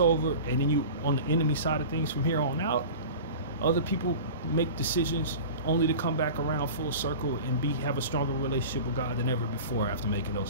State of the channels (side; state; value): both; inverted; correlation -0.35